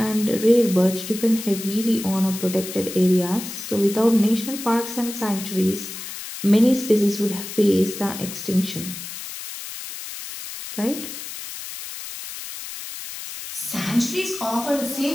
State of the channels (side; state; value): left; noise; hiss, 10 dB below the sound